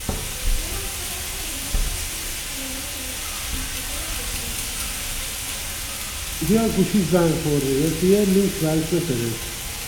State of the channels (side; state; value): both; identical; correlation 1.00